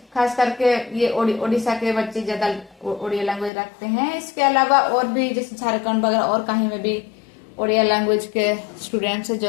खास करके ये ओडिशा के बच्चे ज्यादा ओडिया लैंग्वेज रखते हैं। इसके अलावा और भी जैसे झारखंड वगैरह और कहीं में भी ओडिया लैंग्वेज के स्टूडेंट्स हैं जो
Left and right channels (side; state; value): right; drops out; at 3.5 s